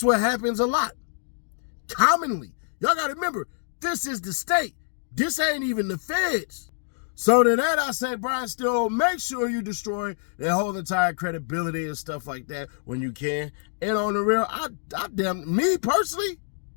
what happens a lot. Commonly. Y'all got to remember, this is the state. This ain't even the feds. So to that I say, Brian Still, make sure you destroy their whole entire credibility and stuff like that when you can. And on the real, me personally,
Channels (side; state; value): right; silent; digital silence